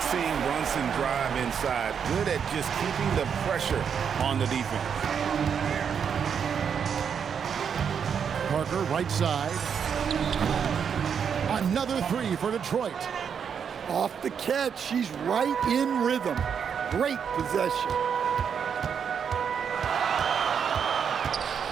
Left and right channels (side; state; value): left; quieter; 7.3 dB